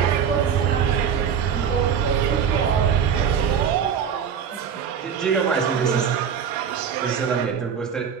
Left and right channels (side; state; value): left; quieter; 7.6 dB